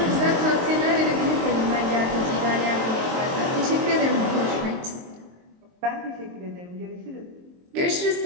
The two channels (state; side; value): late; left; 23 ms